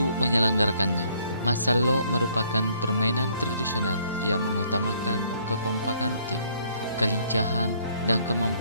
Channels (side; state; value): both; inverted; correlation -0.64